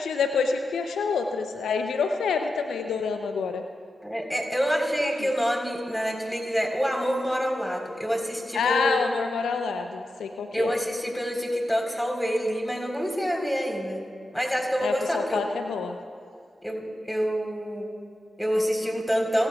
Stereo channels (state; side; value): normal; both; correlation 0.90